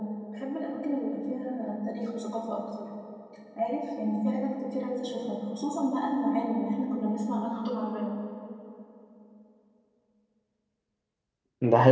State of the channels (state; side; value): identical; both; correlation 1.00